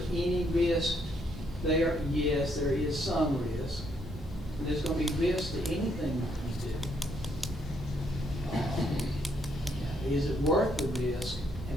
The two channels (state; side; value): normal; both; correlation 0.73